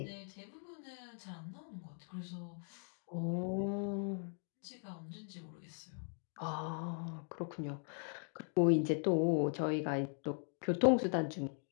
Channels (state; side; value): silent; right; 51 dB below the other